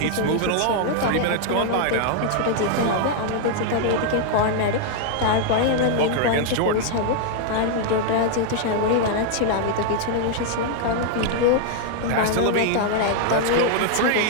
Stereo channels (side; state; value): both; different; correlation 0.00